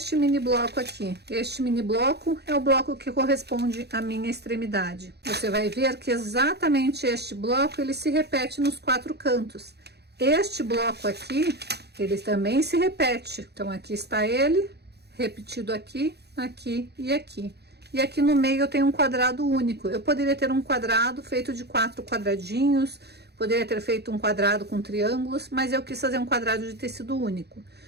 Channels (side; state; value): left; late; 0.48 ms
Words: mini bloco aqui. Este mini bloco é o bloco que corresponde à minha extremidade. Você vai ver que exatamente este bloco, ele se repete nos 4 cantos. Este bloco aqui, ele também se repete. Então, aqui está ele, repetido aqui, aqui e aqui. E aqui no meio eu tenho um quadrado único. Eu poderia ter um quadrado feito de 4 quadradinhos, poderia ter feito um quadrado com triângulos, mas eu quis fazer um quadrado de tecido único.